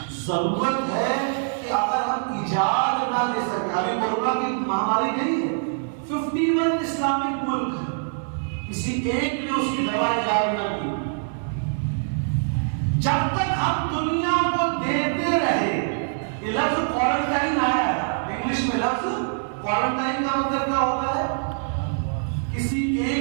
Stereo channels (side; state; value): left; silent; digital silence